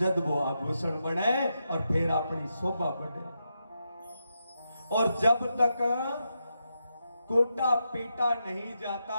वो आभूषण बने और फिर अपनी शोभा बढ़े। और जब तक कोटा पीटा नहीं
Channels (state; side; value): inverted; both; correlation -0.86